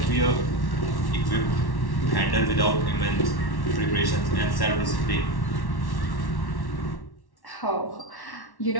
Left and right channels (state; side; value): late; right; 1.1 ms